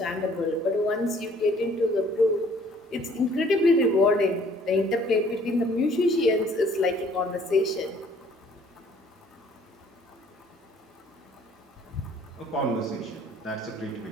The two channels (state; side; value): normal; both; correlation 0.58